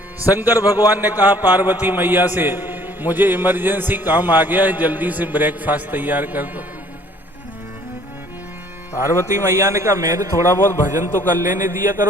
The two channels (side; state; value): both; normal; correlation 0.57